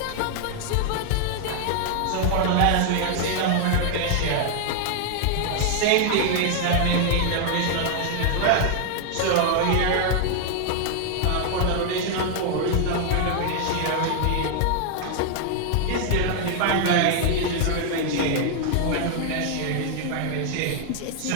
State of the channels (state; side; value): different; both; correlation 0.00